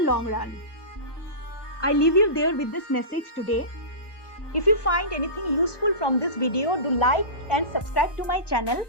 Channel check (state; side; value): late; right; 1.2 ms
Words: run. I leave you there with this message today. If you find anything useful from this video, do like and subscribe to my channel